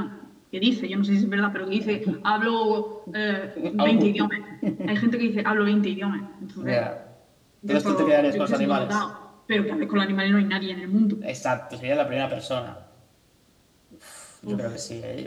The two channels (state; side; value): identical; both; correlation 1.00